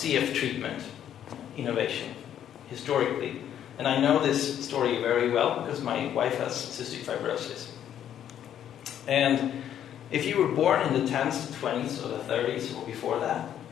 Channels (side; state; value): right; quieter; 10.2 dB